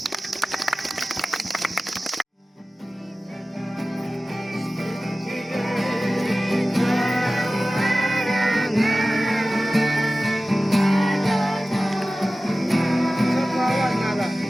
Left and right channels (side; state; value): both; normal; correlation 0.96